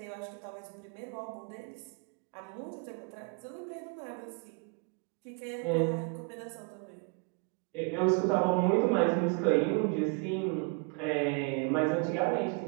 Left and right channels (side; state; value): left; quieter; 33.1 dB